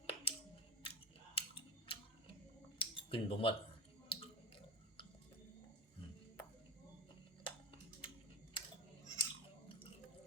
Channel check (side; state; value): both; normal; correlation 0.26